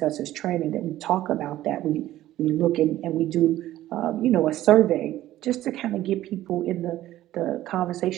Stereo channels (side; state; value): left; quieter; 14.3 dB